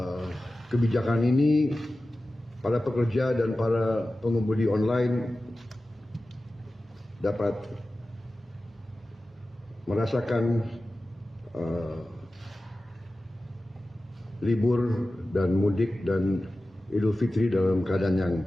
kebijakan ini para pekerja dan para pengemudi online dapat merasakan libur dan mudik dan Idul Fitri dalam keadaan yang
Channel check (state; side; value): normal; both; correlation 0.95